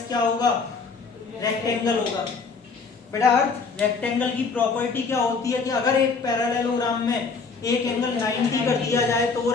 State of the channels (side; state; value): right; quieter; 4.8 dB